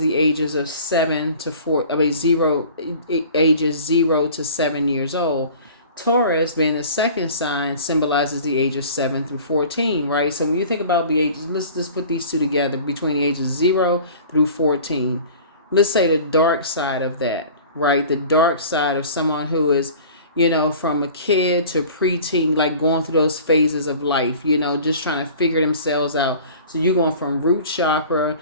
the ages of 7 to 4. Ages 0 to 7 years old. Taurus being the second sign symbolizes the ages 7 through 14, right? So when you think about the ages, let's just put these two together between the ages 0 through 14. Let's say the dark side of that, right? The dark side of someone who is, from a kid to preteen, like going through those phases of life, just trying to figure themselves out. So you're going from root chakra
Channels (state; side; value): inverted; both; correlation -0.44